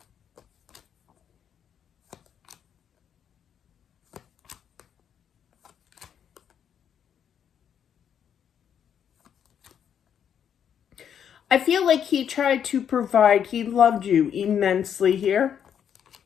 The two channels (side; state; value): right; quieter; 8.5 dB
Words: I feel like he tried to provide, he loved you immensely here.